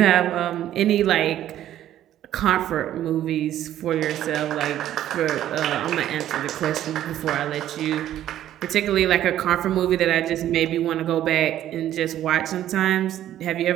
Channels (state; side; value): quieter; left; 12.2 dB